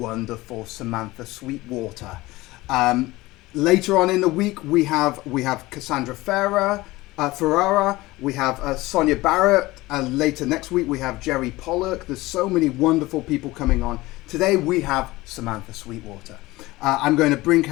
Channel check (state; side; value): quieter; right; 19.6 dB